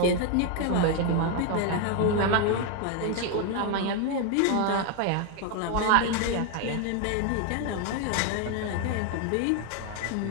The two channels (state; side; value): different; both; correlation 0.01